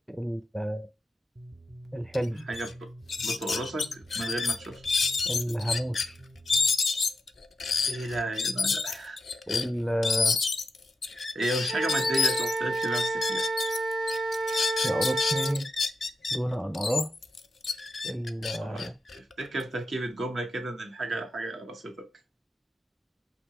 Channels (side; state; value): both; normal; correlation 0.88